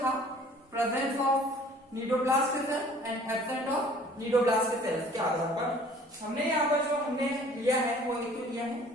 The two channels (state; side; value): normal; both; correlation 0.52